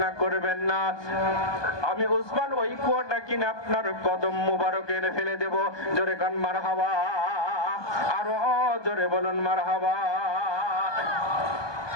করবেন না, আমি উসমান ওই কুয়াটা কিনে আপনার কদম মুবারকে এনে ফেলে দেব। জোরে কান মারহাবা, আরো জোরে বলুন মারহাবা।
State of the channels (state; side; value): late; right; 1.2 ms